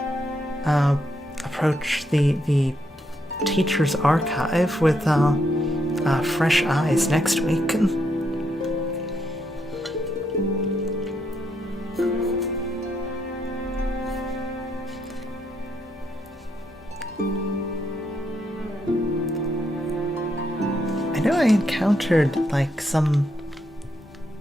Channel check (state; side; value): normal; both; correlation 0.78